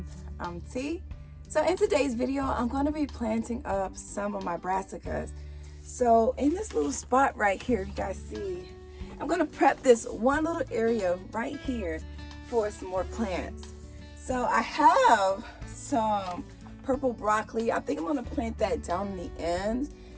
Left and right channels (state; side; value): identical; both; correlation 1.00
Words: I'm T. So in today's video, I'm going to be planting up some of my brassicas. So in this little spot right here, you guys see, I'm going to prep this one little area right here for some more plants. So I have some purple broccoli. I think I'm going to plant that down in the end.